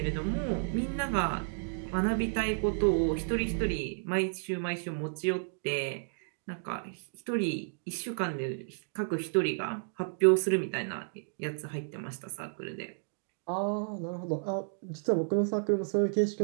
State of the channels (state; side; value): silent; left; digital silence